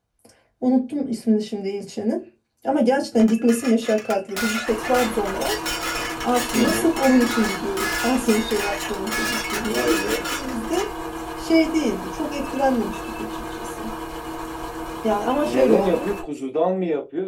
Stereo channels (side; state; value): both; identical; correlation 1.00